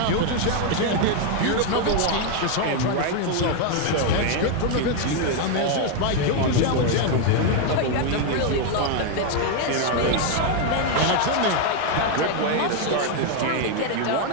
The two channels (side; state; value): both; different; correlation 0.01